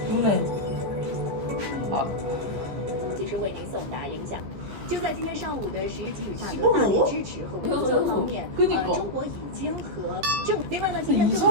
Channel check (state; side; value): late; left; 15 ms